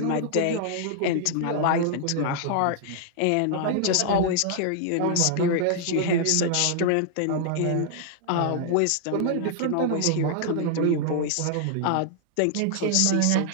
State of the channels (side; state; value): both; different; correlation -0.01